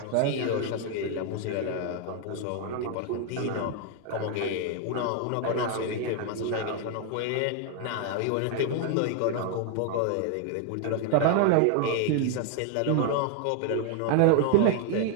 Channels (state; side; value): different; both; correlation 0.00